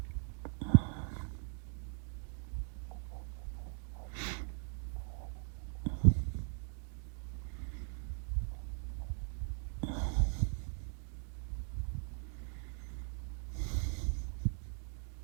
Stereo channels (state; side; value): silent; left; 51 dB below the other